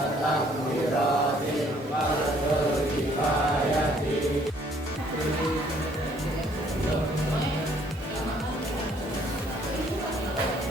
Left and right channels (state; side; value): normal; both; correlation 0.62